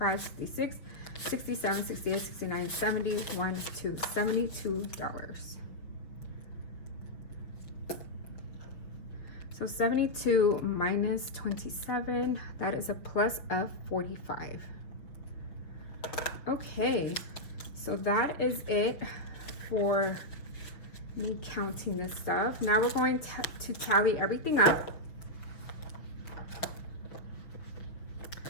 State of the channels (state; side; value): late; right; 6.0 ms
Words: 66, 67, 68, 69, 70, 1, 2, $72. So 72 minus 27, that is a plus of 45. Okay, so that is it for me counting this stuff. Now we're going to tally everything up.